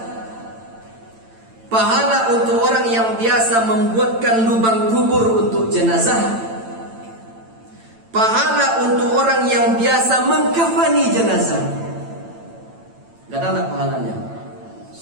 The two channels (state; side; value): late; left; 8.9 ms